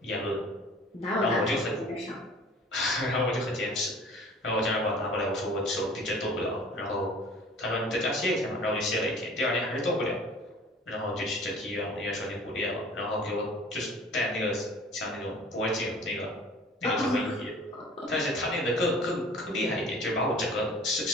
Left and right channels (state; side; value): normal; both; correlation 0.47